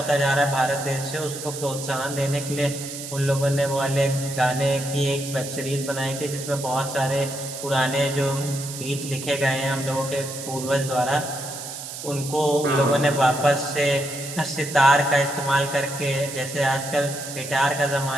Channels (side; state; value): right; noise; hiss, 9 dB below the sound